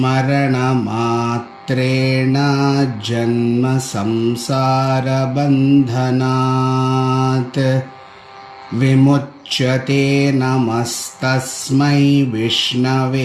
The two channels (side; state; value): both; identical; correlation 1.00